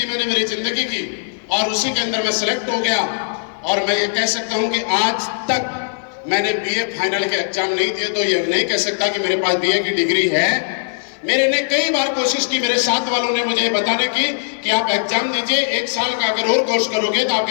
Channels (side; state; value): right; silent; 57 dB below the other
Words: मैंने मेरी जिंदगी की और उसी के अंदर मैं सिलेक्ट हो गया। और मैं ये कह सकता हूं कि आज तक मैंने बीए फाइनल के एग्जाम नहीं दिए, तो ये नहीं कह सकता कि मेरे पास बीए की डिग्री है। मेरे ने कई बार कोशिश की, मेरे साथ वालों ने मुझे बताने की कि आप एग्जाम दीजिए, 1 साल का अगर और कोर्स करोगे तो